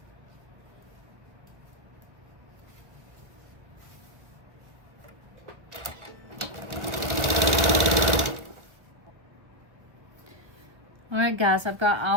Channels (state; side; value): late; left; 1.2 ms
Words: Alright guys, I've got